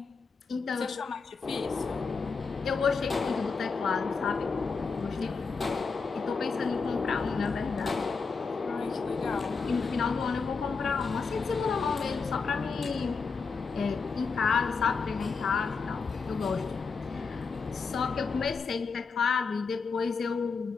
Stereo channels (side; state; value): right; quieter; 4.9 dB